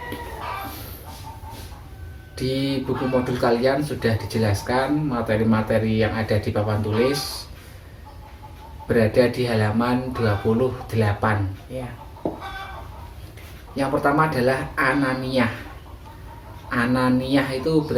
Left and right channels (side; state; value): both; identical; correlation 1.00